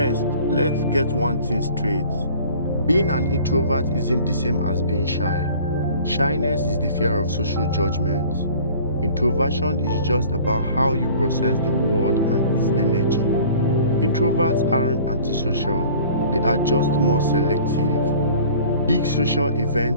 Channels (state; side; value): inverted; both; correlation -0.48